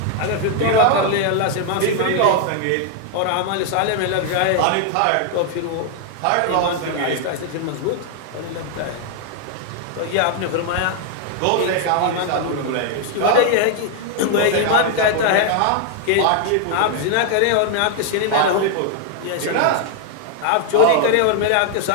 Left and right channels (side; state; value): both; different; correlation 0.00